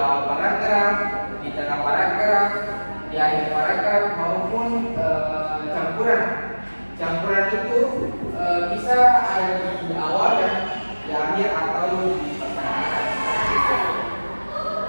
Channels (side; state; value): both; inverted; correlation -1.00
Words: paragraf, di tengah paragraf, di akhir paragraf maupun campuran. Campuran itu bisa ada di awal dan di akhir atau di pertengahan.